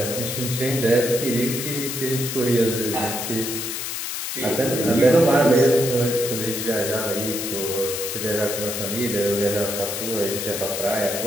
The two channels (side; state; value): left; noise; hiss, 4 dB below the sound